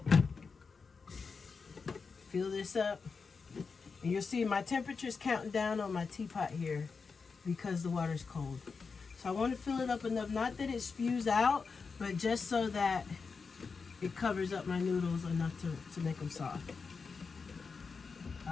Fill this up. And you'll see my temperature's counting down on my teapot here because the water's cold. So I want to fill it up enough, not that it spews out, but just so that it covers up my noodles enough to make them soft.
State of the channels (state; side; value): quieter; right; 5.0 dB